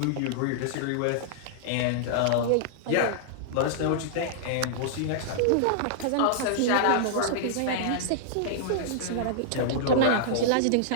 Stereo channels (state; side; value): different; both; correlation -0.02